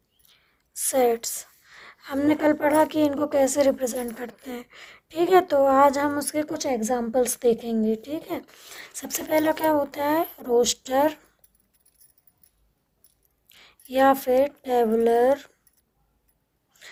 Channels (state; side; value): identical; both; correlation 1.00